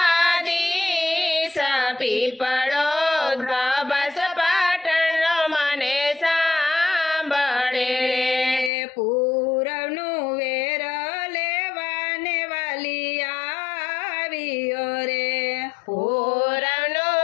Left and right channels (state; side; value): drops out; right; at 8.7 s